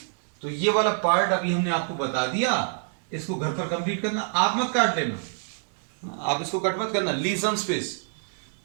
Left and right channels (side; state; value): left; silent; 61 dB below the other